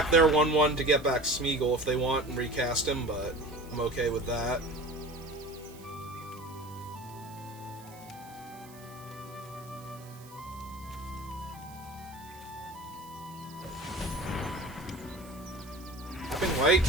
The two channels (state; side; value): noise; right; hiss, 21 dB below the sound